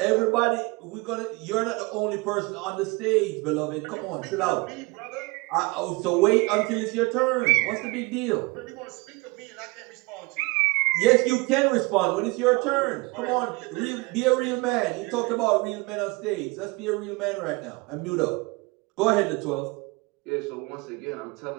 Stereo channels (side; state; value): left; quieter; 25.6 dB